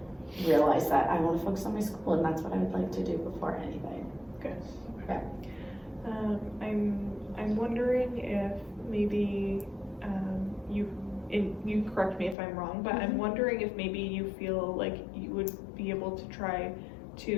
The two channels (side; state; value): right; drops out; at 12.4 s